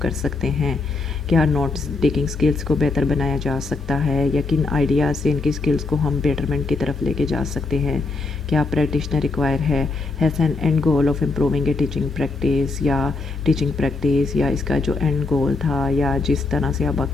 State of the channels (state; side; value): quieter; right; 3.6 dB